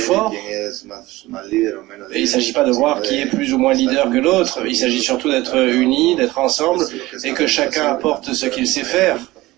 Et il ne s'agit pas de voir qui est plus ou moins leader que l'autre, il s'agit surtout d'être unis, d'être ensemble, et que chacun apporte ce qu'il sait faire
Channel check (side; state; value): left; quieter; 18.8 dB